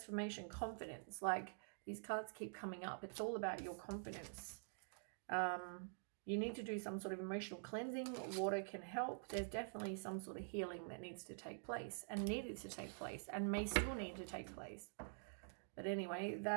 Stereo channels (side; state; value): left; silent; digital silence